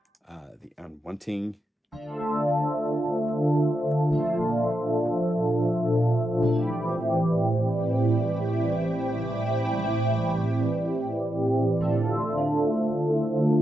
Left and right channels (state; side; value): normal; both; correlation 0.87